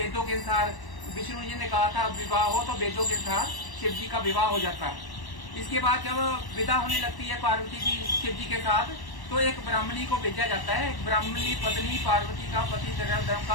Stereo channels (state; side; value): late; right; 1.1 ms